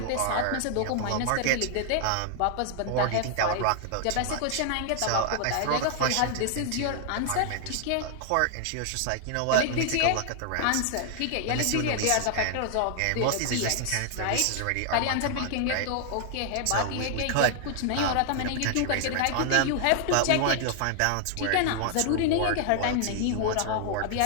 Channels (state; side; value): different; both; correlation 0.00